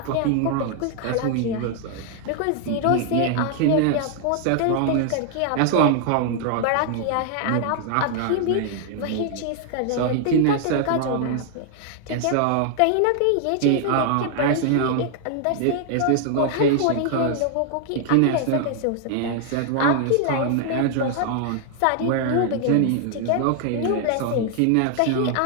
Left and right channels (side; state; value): both; different; correlation 0.00